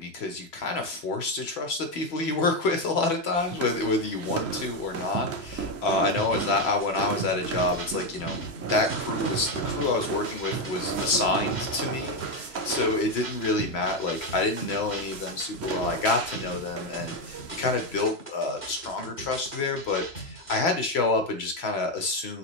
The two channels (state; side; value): late; right; 3.0 ms